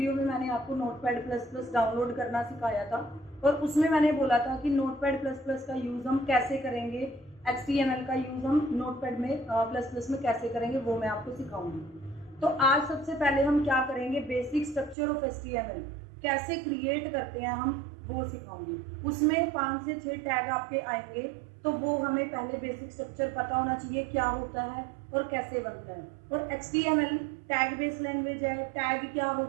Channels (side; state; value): left; drops out; at 15.0 s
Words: में मैंने आपको नोटपैड प्लस प्लस डाउनलोड करना सिखाया था और उसमें मैंने बोला था कि नोटपैड प्लस प्लस का यूज़ हम कैसे करेंगे, HTML का यूज़ हम नोटपैड में प्लस प्लस में कैसे करेंगे वो मैं आपको सिखाऊंगी। तो आज सबसे पहले हम क्या करेंगे, बेसिक स्ट्रक्चर ऑफ HTML कैसे क्रिएट करते हैं हम वो सिखाऊंगी। उसमें 5 से 6 टैग आपके आएंगे, तो वो हमें पहले बेसिक स्ट्रक्चर पता होना चाहिए क्या होता है और कैसे बनता है। और HTML टैग बेस लैंग्वेज है, टैग क्या